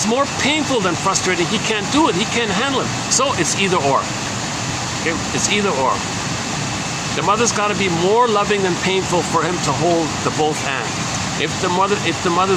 more painful than frustrating, he can't do it. He can't handle it. So it's either or. Okay? It's either or. The mother's got to be more loving than painful for him to hold the both and. If the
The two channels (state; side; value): identical; both; correlation 1.00